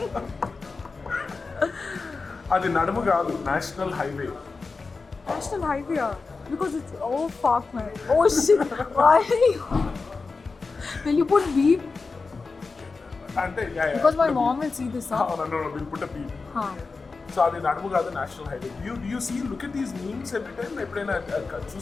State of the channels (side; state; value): right; quieter; 4.2 dB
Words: అది నడుము కాదు national highway National highway, yeah. Because it's, oh fuck man, oh shit, why are you? Will you put beep? అంటే Because my mom will see this, huh? Will put a beep Huh. So అది నడుము కాదు national highway you see look at these memes every time ఎప్పుడైనా